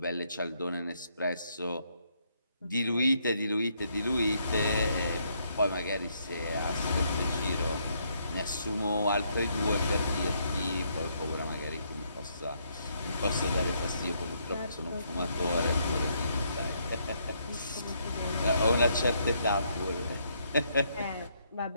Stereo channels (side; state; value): both; inverted; correlation -0.73